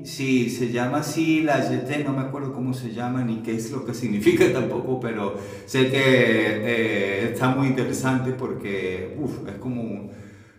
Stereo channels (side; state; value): both; identical; correlation 1.00